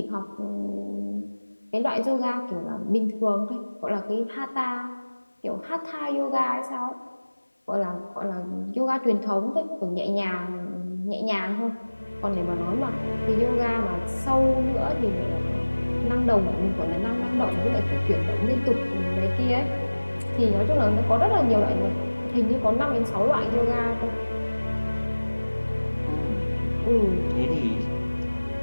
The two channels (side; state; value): both; inverted; correlation -1.00